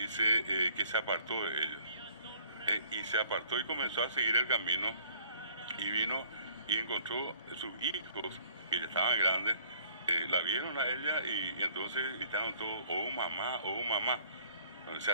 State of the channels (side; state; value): both; inverted; correlation -0.57